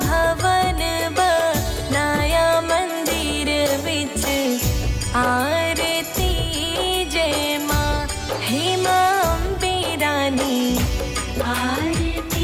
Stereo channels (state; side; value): identical; both; correlation 1.00